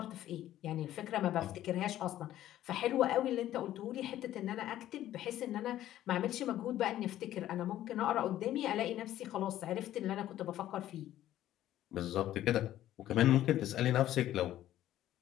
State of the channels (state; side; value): quieter; right; 13.1 dB